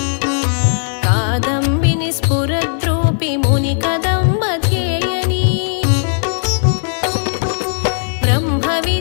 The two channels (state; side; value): silent; right; digital silence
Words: कादम्बिनि स्फुरद्रूपि मुनिकदम्बध्येयनी